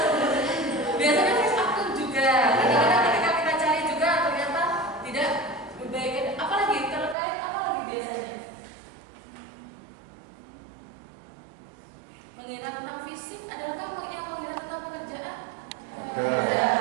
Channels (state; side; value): drops out; left; at 7.2 s